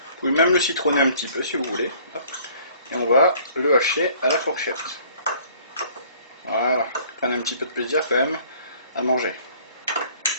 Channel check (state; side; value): inverted; both; correlation -0.56